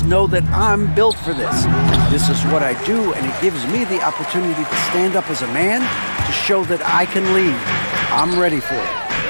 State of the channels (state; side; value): inverted; both; correlation -1.00